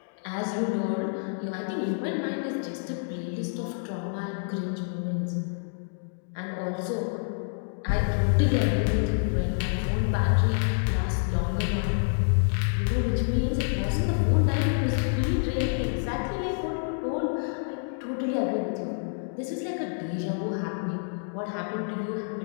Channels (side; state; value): right; silent; digital silence